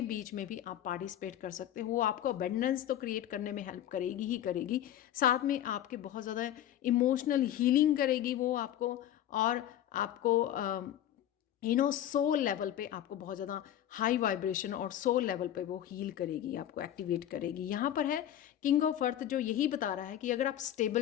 बीच में भी आप पार्टिसिपेट कर सकते हो। वो आपको अबंडेंस तो क्रिएट करने में हेल्प करेगी ही करेगी, साथ में आपके बहुत ज़्यादा इमोशनल हीलिंग करेगी वो आपको, और आपको सोल लेवल पे आपको बहुत ज़्यादा हाई वाइब्रेशन और सोल लेवल पे वो हील करेगी, आपको एक्टिवेट करेगी। यहाँ पर है किंग ऑफ अर्थ, जो यही बता रहा है कि अगर आप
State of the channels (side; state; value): right; quieter; 11.6 dB